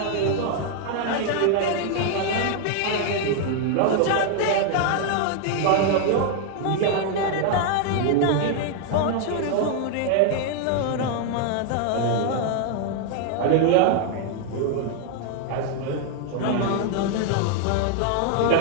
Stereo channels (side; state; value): both; different; correlation 0.00